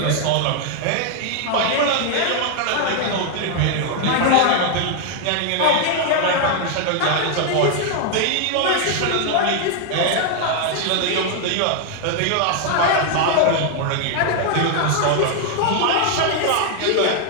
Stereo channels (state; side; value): different; both; correlation 0.00